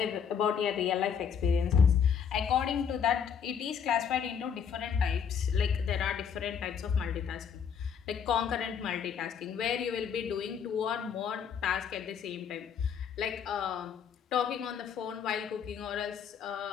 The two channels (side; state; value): right; quieter; 7.3 dB